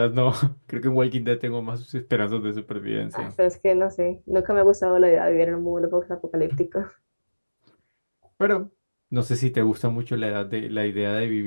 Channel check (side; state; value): both; inverted; correlation -1.00